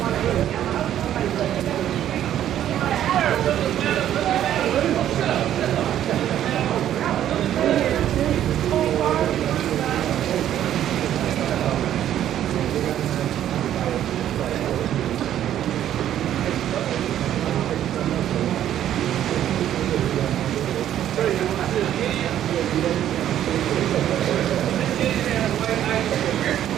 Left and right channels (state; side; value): quieter; left; 11.3 dB